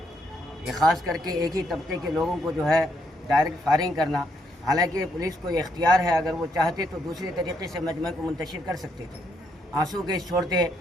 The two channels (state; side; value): normal; both; correlation 0.75